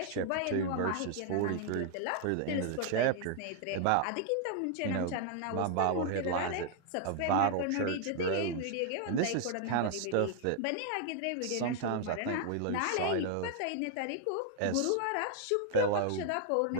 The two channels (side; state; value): both; different; correlation 0.00